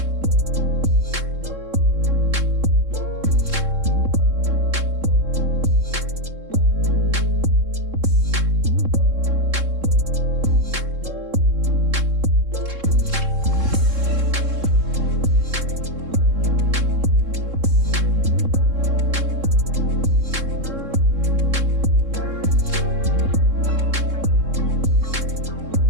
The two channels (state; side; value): late; left; 3.7 ms